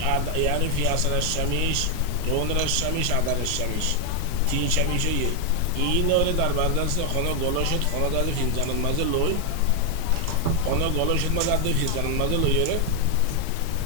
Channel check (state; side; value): different; both; correlation 0.00